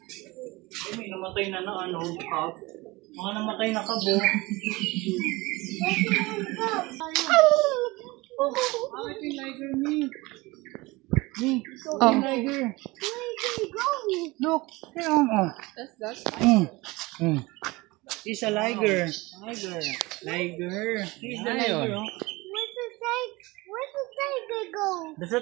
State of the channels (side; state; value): left; quieter; 22.4 dB